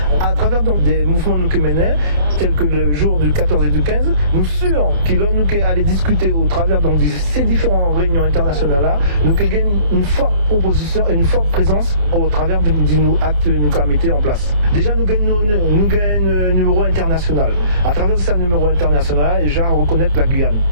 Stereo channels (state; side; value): late; left; 28 ms